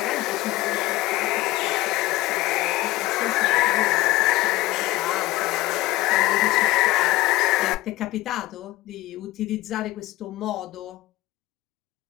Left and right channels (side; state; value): right; quieter; 18.0 dB